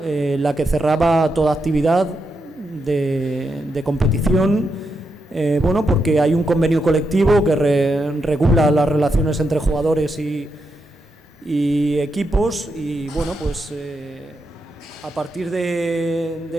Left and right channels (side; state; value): both; normal; correlation 0.84